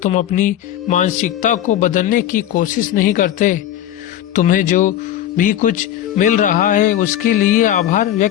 तुम अपनी मानसिकता को बदलने की कोशिश नहीं करते। तुम्हें जो भी कुछ मिल रहा है उसके लिए आभार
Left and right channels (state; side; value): quieter; right; 11.6 dB